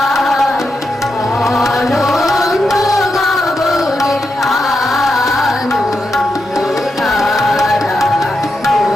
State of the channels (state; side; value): normal; both; correlation 0.85